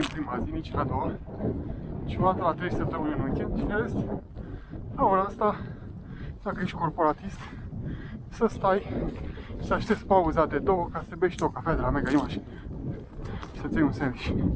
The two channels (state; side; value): identical; both; correlation 1.00